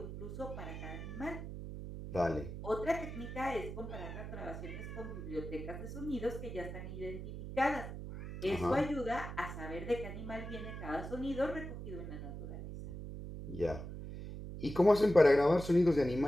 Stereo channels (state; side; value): noise; right; hum, 8 dB below the sound